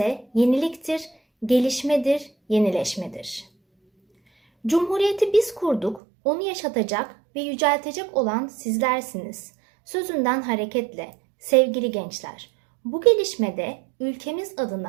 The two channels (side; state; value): left; drops out; at 6.0 s